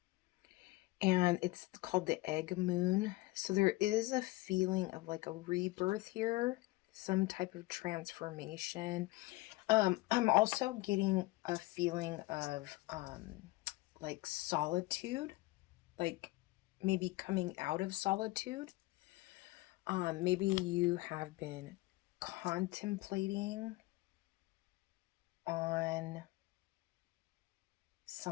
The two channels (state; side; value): quieter; right; 20.6 dB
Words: And it's called the egg moon. So there is a feeling of like a rebirth here, some type of transformation. I'm also getting a feeling of like solitude, like maybe coming out of solitude. Maybe you have been contemplating on